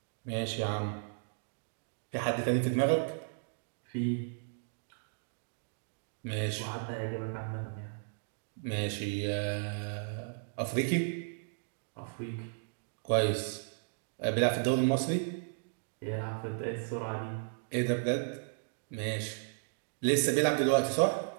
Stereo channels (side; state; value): left; silent; digital silence